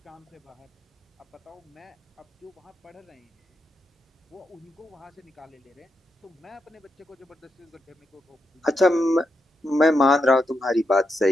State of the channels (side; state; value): both; normal; correlation 0.84